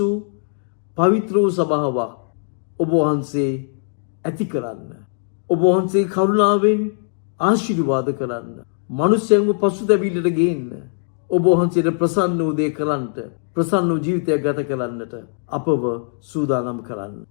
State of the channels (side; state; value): right; silent; digital silence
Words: පවිත්‍ර වූ සභාවක් ඔබ වහන්සේ ඇති කරන්න. ඔබ වහන්සේ කරුණාවෙන් ආශිර්වාද කරන්න. මනුෂ්‍යයන්ව පසුතැවිල්ලට ගේන්න. ඔබ වහන්සේට ප්‍රසන්න වූ දේ කරන්නට, ප්‍රසන්න වූ ජීවිතයක් ගත කරන්නට අපව සූදානම් කරන්න.